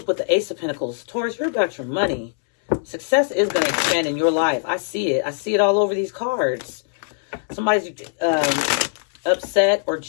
with the Ace of Pentacles. Taurus, you're about your money. Success is going to expand in your life. I see it. I see it all over these cards. Somebody's upset, or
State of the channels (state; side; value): silent; right; 64 dB below the other